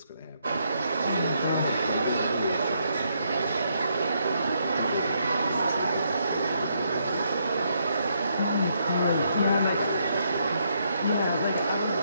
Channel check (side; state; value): both; inverted; correlation -0.75